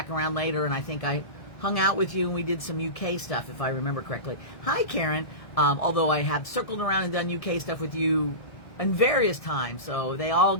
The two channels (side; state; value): right; late; 1.6 ms